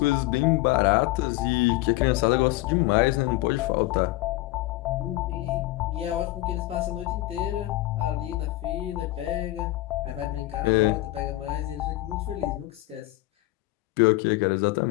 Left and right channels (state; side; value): quieter; right; 17.8 dB